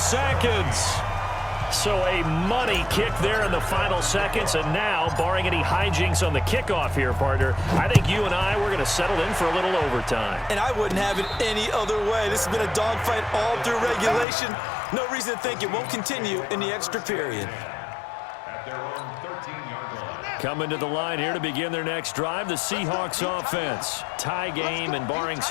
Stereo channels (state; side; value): drops out; right; at 14.2 s